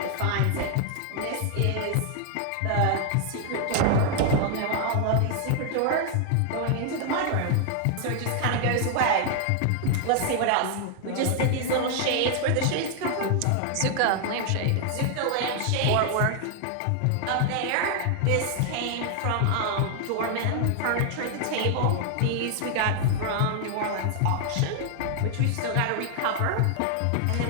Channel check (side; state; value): both; different; correlation 0.00